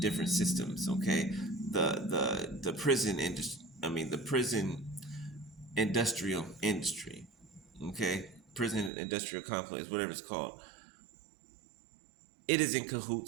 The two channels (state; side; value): drops out; left; at 8.9 s